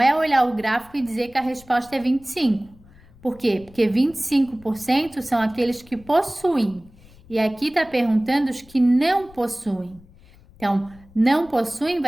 olhar o gráfico e dizer que a resposta é 25. Por quê? Porque 25% são aqueles que possuem. E aqui está perguntando os que não possuem. Então, não possuem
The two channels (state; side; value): noise; left; rumble, 25 dB below the sound